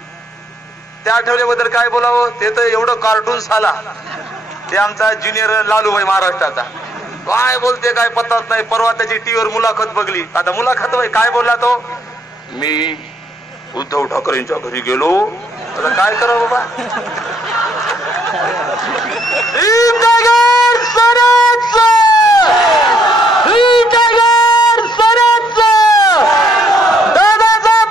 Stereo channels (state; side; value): normal; both; correlation 0.69